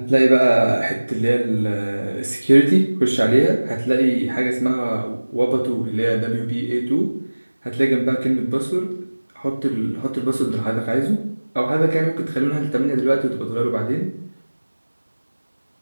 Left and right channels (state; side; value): inverted; both; correlation -1.00